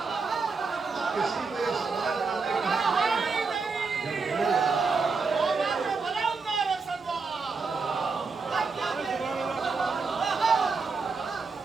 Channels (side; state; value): left; quieter; 4.5 dB